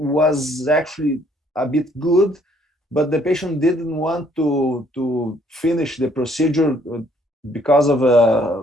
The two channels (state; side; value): normal; both; correlation 0.64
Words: actually a bit good, but the patient didn't want to finish the procedure because